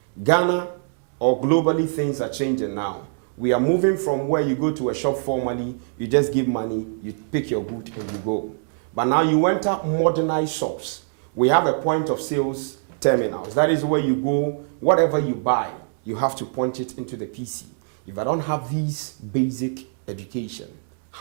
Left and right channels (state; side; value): silent; left; digital silence